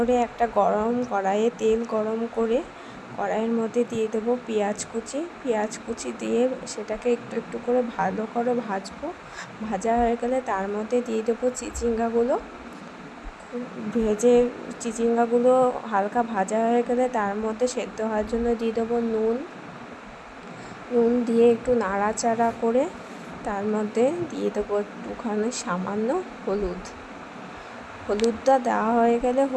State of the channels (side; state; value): both; identical; correlation 1.00